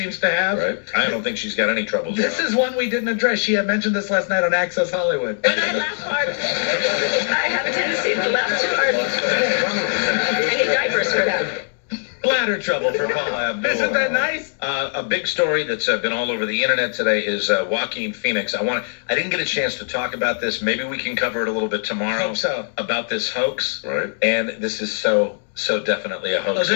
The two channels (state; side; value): silent; right; digital silence